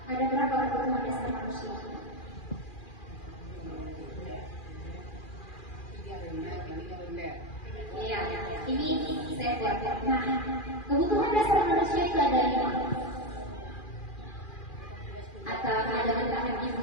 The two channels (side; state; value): right; late; 2.4 ms